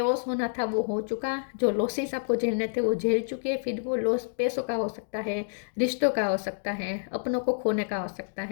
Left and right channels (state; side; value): silent; right; digital silence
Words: होना था वो हो चुका। जो लॉसेस आपको झेलने थे वो झेल चुके। फिर वो लॉस पैसों का हो सकता है, रिश्तों का हो सकता है, अपनों को खोने का हो सकता